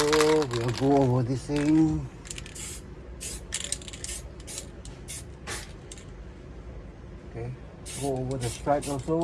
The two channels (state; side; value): identical; both; correlation 1.00